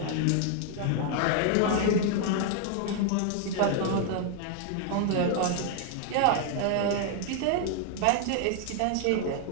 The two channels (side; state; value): both; different; correlation 0.00